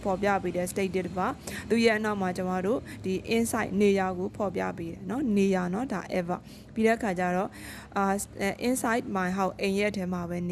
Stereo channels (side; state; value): both; identical; correlation 1.00